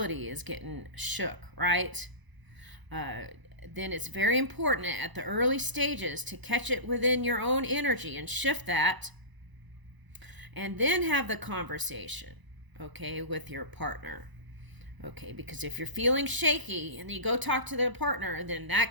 is getting shook, right? Then it's very important at the early stages to catch it within your own energy and shift that. And then have the conversation, okay, with your partner. Okay, because if you're feeling shaky and you go talk to the partner, then that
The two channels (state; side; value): late; left; 1.0 ms